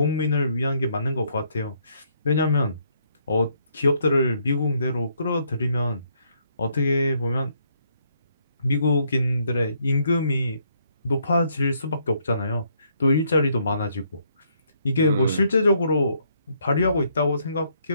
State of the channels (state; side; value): inverted; both; correlation -0.71